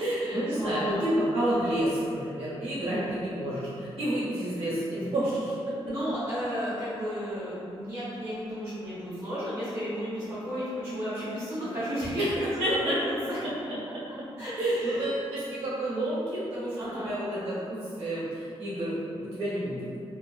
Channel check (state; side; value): normal; both; correlation 0.70